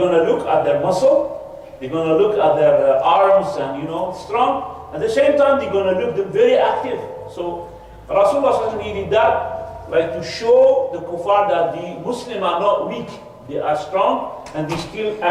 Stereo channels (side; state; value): both; identical; correlation 1.00